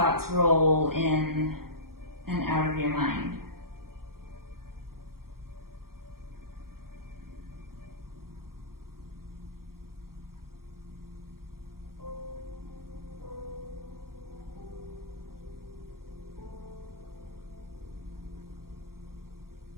roll in and out of your mind.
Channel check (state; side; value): late; left; 0.93 ms